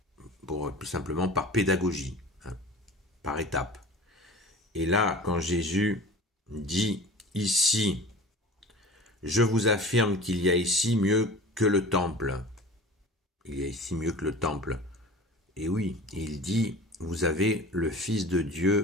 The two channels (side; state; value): both; normal; correlation 0.39